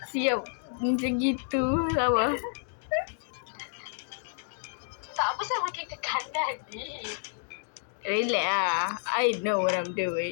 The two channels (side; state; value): right; silent; digital silence